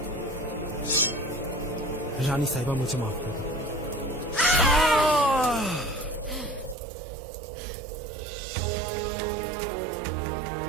रानी साहिबा मुझे माफ कर दो।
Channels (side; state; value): left; drops out; at 6.8 s